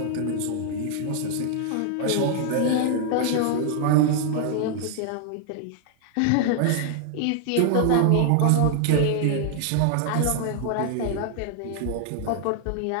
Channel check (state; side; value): different; both; correlation 0.00